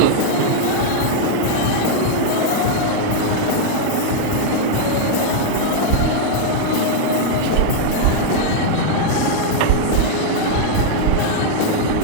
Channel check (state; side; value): different; both; correlation -0.01